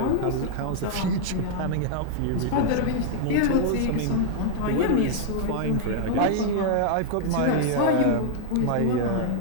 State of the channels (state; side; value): different; both; correlation -0.01